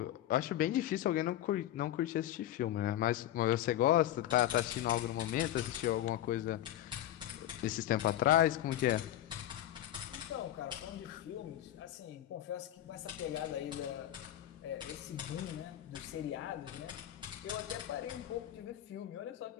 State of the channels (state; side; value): quieter; right; 12.8 dB